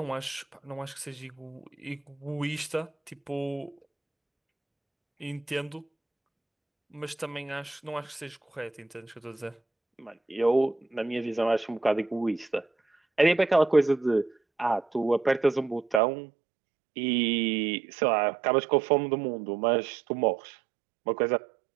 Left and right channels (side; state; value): left; drops out; at 16.0 s